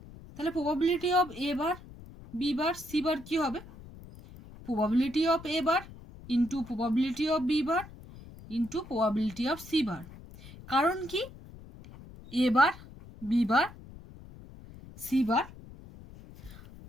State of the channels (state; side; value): noise; left; rumble, 18 dB below the sound